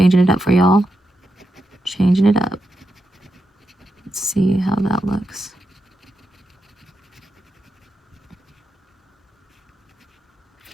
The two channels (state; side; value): normal; both; correlation 0.86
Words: it up for y'all. Changing it up. Let's see how that looks.